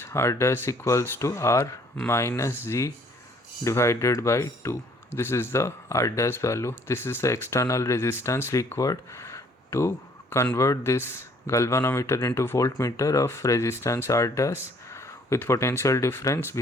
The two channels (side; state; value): both; normal; correlation 0.60